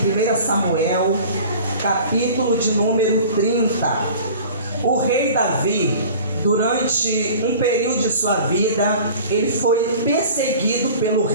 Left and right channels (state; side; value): inverted; both; correlation -0.43